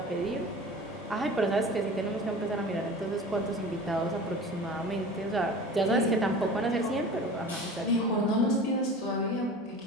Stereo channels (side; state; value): both; normal; correlation 0.38